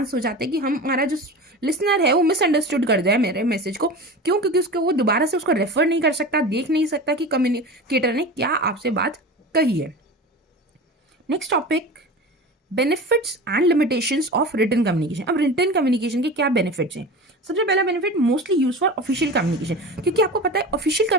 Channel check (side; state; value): both; normal; correlation 0.31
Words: हो जाते हैं कि हमारा जो लिसनर है वो मिसअंडरस्टूड कर जाए मेरे मैसेज को। क्यों? क्योंकि उसको वो दोबारा से उसको रेफर नहीं कर सकता, देख नहीं सकता कि कम्युनिकेटर ने क्या आपसे बात कही है। Next topic, benefits and limitations of written communication. अब रिटन कम्युनिकेशन के क्या बेनिफिट्स हैं? सबसे पहला benefit, mostly use for official communication, क्योंकि आपको पता है ऑफिशियल